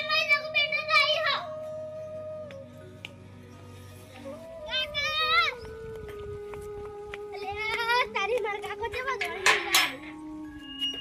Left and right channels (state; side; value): identical; both; correlation 1.00